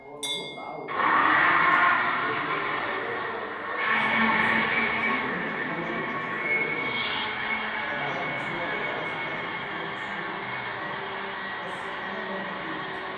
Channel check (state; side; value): identical; both; correlation 1.00